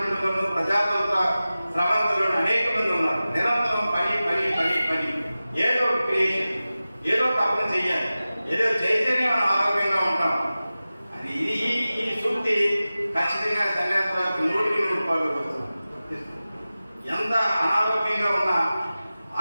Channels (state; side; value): inverted; both; correlation -0.96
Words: ప్రజాతంత్ర స్రవంతులను అనేక మంది ఉన్నారు. నిరంతరం పని పని పని పని, ఏదో క్రియేషన్, ఏదో తప్పని చెయ్యాలి, ఏదో చేస్తేనే మనం ఆరోగ్యంగా ఉంటాం. అది ఈ సూక్తి ఖచ్చితంగా సన్యాసరావుకి 100% వస్తుంది. ఎంత అనారోగ్యంగా ఉన్నా